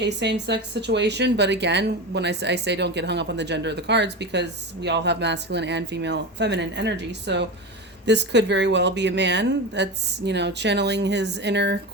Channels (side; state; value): both; normal; correlation 0.23